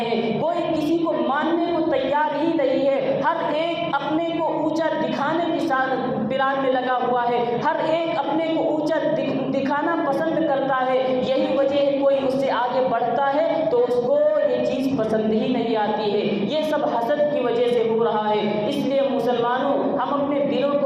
ہیں، کوئی کسی کو ماننے کو تیار ہی نہیں ہے، ہر ایک اپنے کو اونچا دکھانے کی پلان میں لگا ہوا ہے، ہر ایک اپنے کو اونچا دکھانا پسند کرتا ہے۔ یہی وجہ ہے کوئی اس سے آگے بڑھتا ہے تو اس کو یہ چیز پسند ہی نہیں آتی ہے۔ یہ سب حسد کی وجہ سے ہو رہا ہے۔ اس لیے مسلمانوں، ہم اپنے دلوں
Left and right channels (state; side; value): identical; both; correlation 1.00